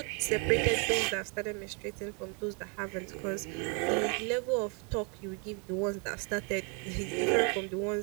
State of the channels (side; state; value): left; quieter; 35.9 dB